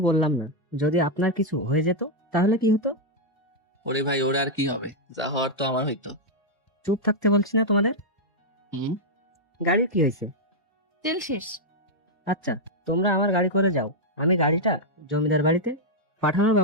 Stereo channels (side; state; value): both; normal; correlation -0.03